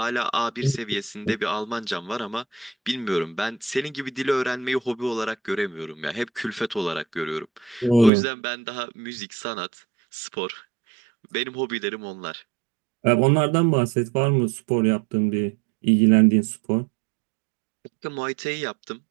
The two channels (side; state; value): left; drops out; at 8.1 s